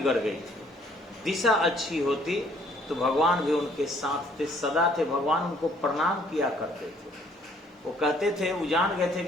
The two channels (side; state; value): both; normal; correlation 0.62